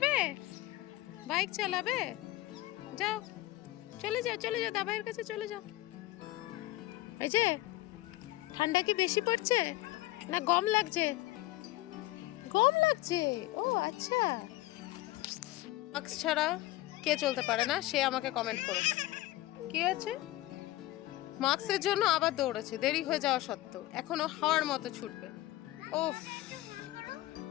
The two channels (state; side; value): quieter; right; 17.4 dB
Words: বাইক চালাবে? যাও, চলে যাও চলে যাও, দাবাইয়ের কাছে চলে যাও। এই যে ঠান্ডা কি বেশি পড়ছে না গম লাগছে? গম লাগছে, ও আচ্ছা। মাস্ক ছাড়া কে চলতে পারে না সে আমাকে কমেন্ট করো। কি আছে? মাস্কের জন্য আবার দৌড়েছে, দেরি হয়ে যাওয়া সত্ত্বেও এখনো হাওয়ার মতো ছুটবে। ও